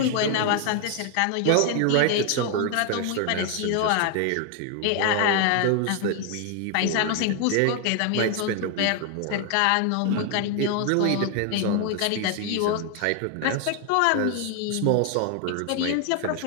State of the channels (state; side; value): different; both; correlation 0.00